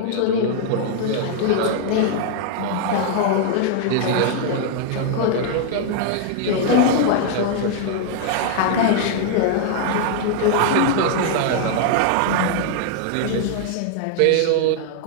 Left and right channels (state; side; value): different; both; correlation 0.00